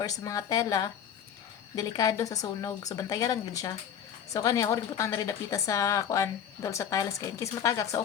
sa mga tela delikado sa sunog so bantayan lang gid siya. So kani ako rin butang na rin dapita sa kuan dol sa tiles kay in case matagak so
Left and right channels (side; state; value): right; quieter; 8.7 dB